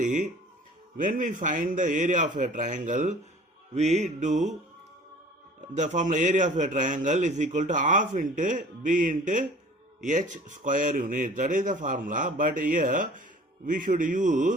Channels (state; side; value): normal; both; correlation 0.47